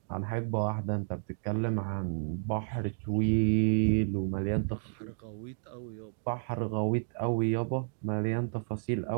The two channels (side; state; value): left; silent; digital silence